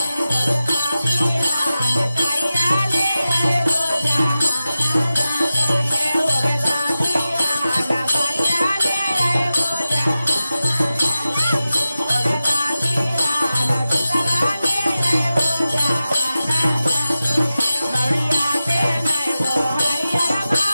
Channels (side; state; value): both; inverted; correlation -0.94